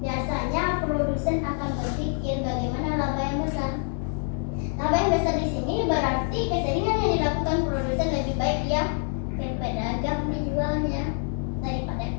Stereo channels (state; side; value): silent; right; 61 dB below the other